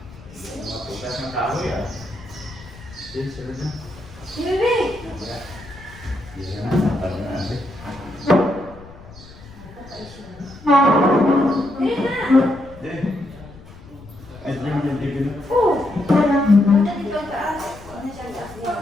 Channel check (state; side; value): noise; left; rumble, 19 dB below the sound